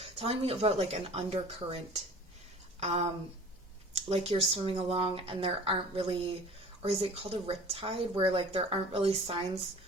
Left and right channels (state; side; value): normal; both; correlation 0.45